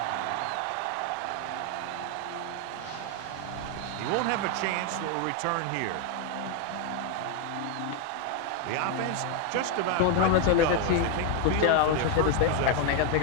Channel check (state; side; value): different; both; correlation 0.00